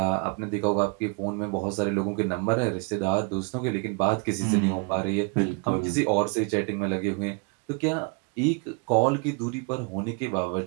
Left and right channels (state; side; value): quieter; left; 34.3 dB